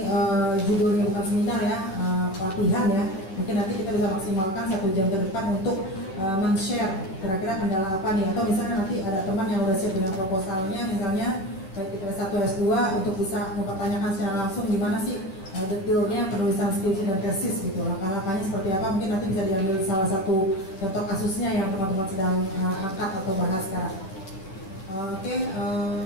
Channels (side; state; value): right; late; 10 ms